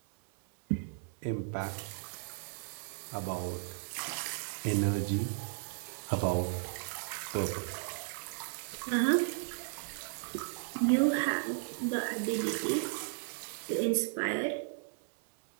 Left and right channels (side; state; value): left; silent; 55 dB below the other